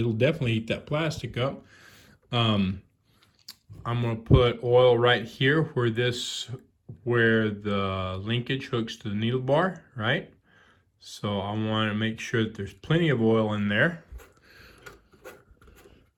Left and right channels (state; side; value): identical; both; correlation 1.00